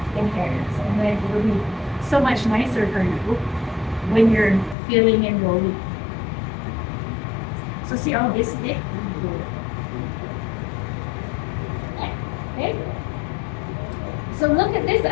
tear. And then it will be so much nicer for you when you're filling and rolling. So see all this thick? Okay. So look at this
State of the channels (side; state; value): right; drops out; at 4.8 s